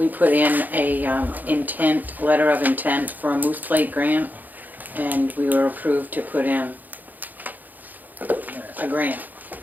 put in a letter of intent for a Moose Plate grant, and we were approved to put in a grant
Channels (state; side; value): late; left; 0.084 ms